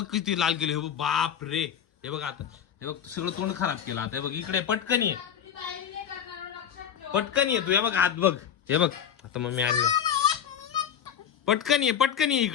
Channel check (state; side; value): quieter; right; 8.7 dB